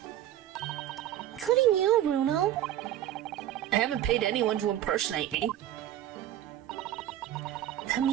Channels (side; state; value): left; quieter; 12.3 dB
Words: Including you, Bruno. I haven't paid anyone to impersonate me. That